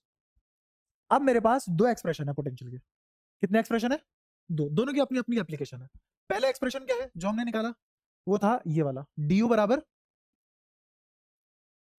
अब मेरे पास दो एक्सप्रेशन है पोटेंशियल के। कितने एक्सप्रेशन है? दो। दोनों की अपनी अपनी एप्लीकेशन है। पहला एक्सप्रेशन क्या है जो हमने निकाला? वो था ये वाला, du बराबर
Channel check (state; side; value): identical; both; correlation 1.00